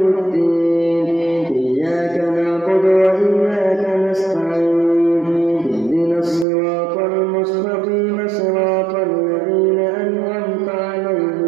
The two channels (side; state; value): left; drops out; at 6.5 s